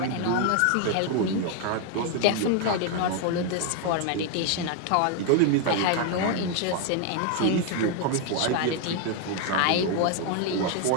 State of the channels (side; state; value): both; different; correlation 0.01